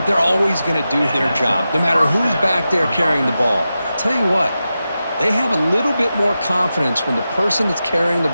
They're always going to do their job, no matter who's back there carrying the ball. I'll tell you what, they have a little bit more confidence when the person that's carrying the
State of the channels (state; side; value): inverted; both; correlation -0.91